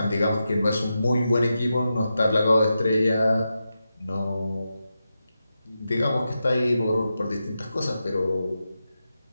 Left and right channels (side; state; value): both; inverted; correlation -0.89